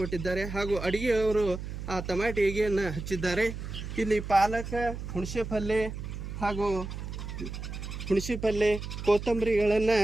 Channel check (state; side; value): noise; right; hum, 7 dB below the sound